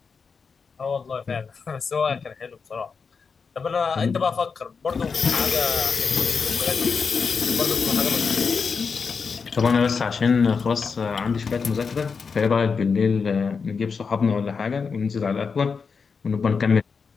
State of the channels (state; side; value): quieter; right; 5.4 dB